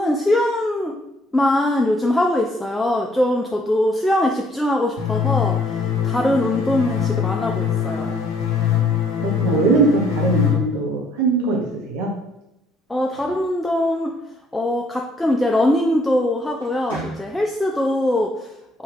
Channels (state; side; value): normal; both; correlation 0.64